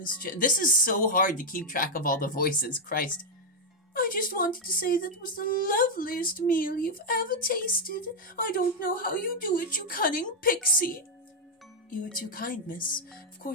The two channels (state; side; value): normal; both; correlation 0.00